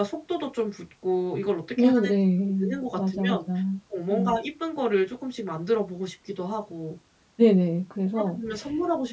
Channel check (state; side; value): identical; both; correlation 1.00